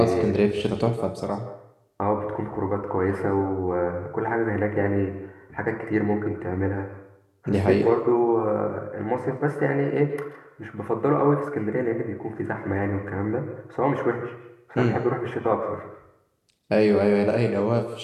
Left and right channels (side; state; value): both; identical; correlation 1.00